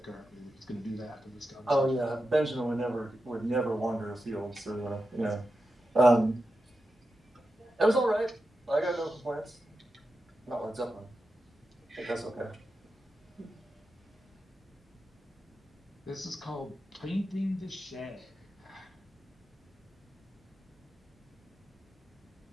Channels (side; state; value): both; normal; correlation 0.90